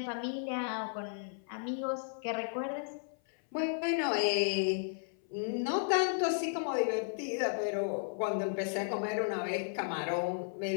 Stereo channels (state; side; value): silent; right; 55 dB below the other